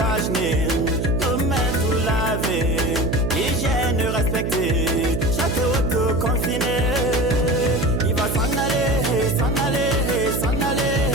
vaginée, nos mains tout lavées, hygiène respectée, chaque auto confiné. Il va s'en aller, s'en aller, s'en aller,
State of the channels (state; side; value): noise; right; hum, 1 dB below the sound